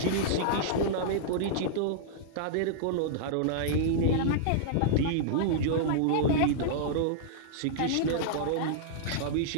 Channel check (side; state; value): both; different; correlation -0.02